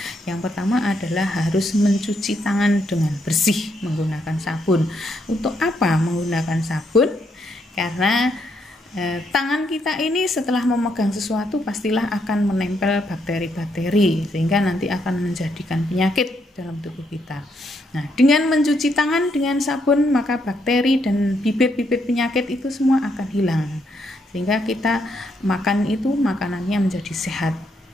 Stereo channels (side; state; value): both; normal; correlation 0.76